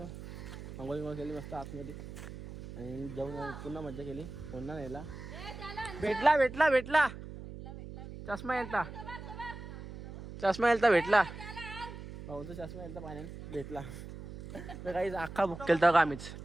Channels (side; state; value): right; noise; hum, 11 dB below the sound